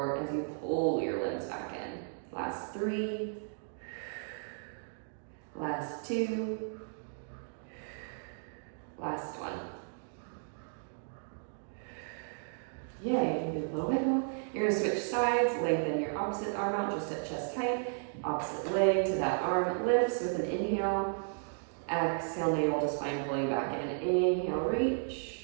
as you pull your limbs back in? Last 3. Last two. Last one. Yay, you did a little wiggle. You're gonna switch sides, lengthen your opposite arm out just at chest height. Opposite leg to that arm lifts with an inhale. Exhale, navel to spine, pulling back in. Inhale,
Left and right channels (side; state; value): left; silent; digital silence